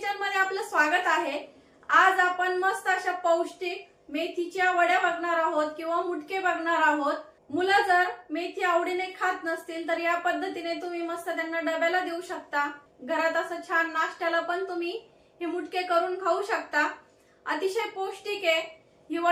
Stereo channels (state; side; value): identical; both; correlation 1.00